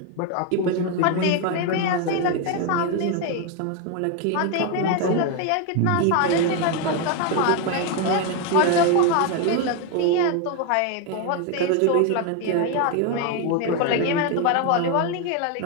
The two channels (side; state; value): both; different; correlation 0.01